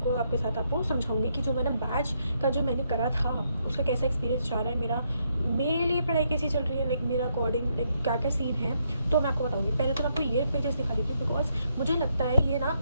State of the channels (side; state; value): both; inverted; correlation -0.76